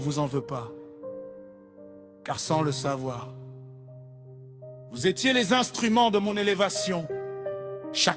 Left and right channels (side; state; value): both; identical; correlation 1.00